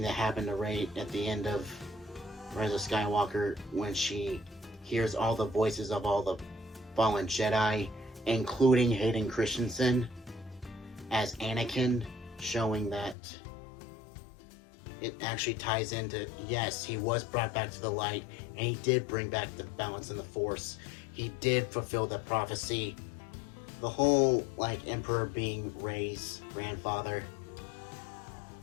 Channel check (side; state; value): right; drops out; at 13.2 s